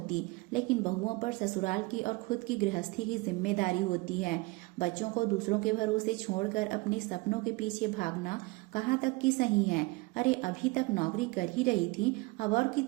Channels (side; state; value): left; quieter; 24.2 dB